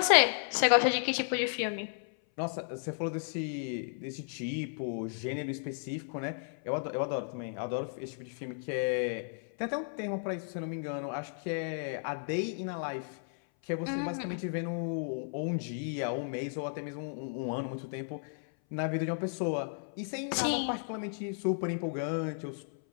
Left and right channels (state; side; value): silent; right; 55 dB below the other